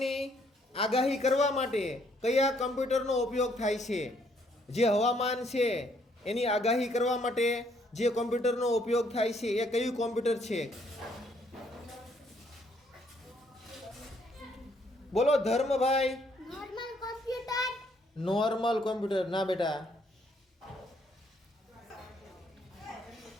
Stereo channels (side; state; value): both; normal; correlation 0.68